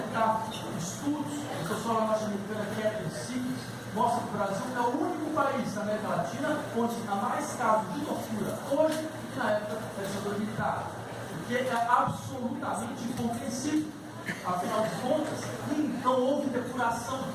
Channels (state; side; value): identical; both; correlation 1.00